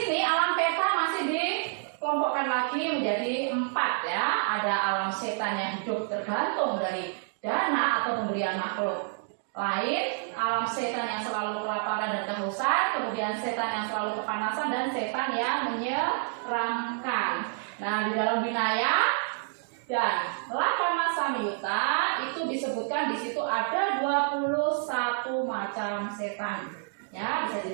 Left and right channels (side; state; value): left; silent; 59 dB below the other